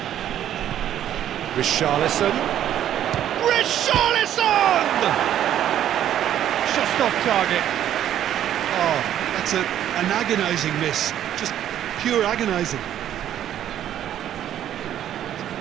Richarlison. Richarlison! Just off target. Oh, that's an agonising miss. Just pure agonising.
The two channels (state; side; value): quieter; left; 11.0 dB